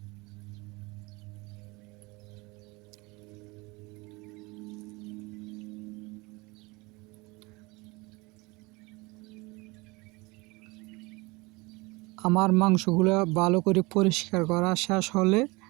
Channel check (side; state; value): left; quieter; 24.9 dB